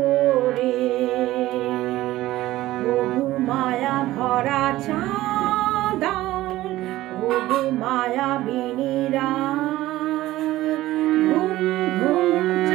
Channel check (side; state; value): left; quieter; 16.2 dB